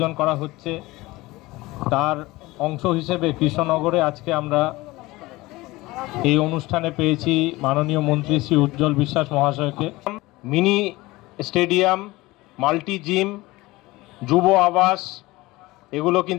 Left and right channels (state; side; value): quieter; right; 20.3 dB